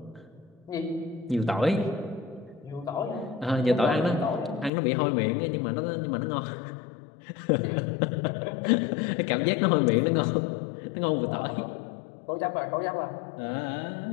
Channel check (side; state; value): right; drops out; at 4.7 s